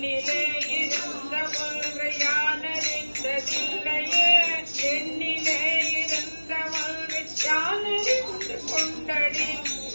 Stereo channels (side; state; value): both; inverted; correlation -1.00